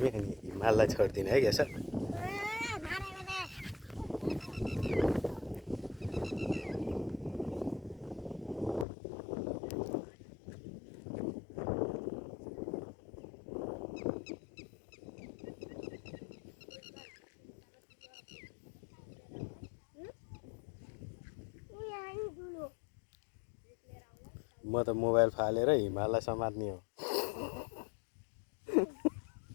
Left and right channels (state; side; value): drops out; right; at 8.8 s